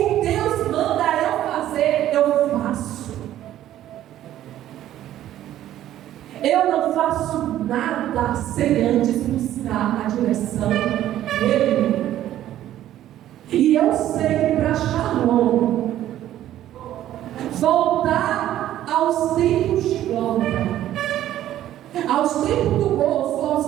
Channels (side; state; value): left; quieter; 12.6 dB